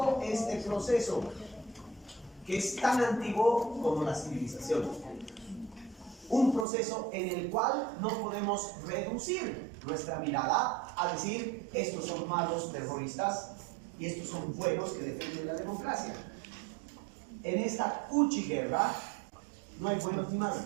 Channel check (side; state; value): left; drops out; at 6.7 s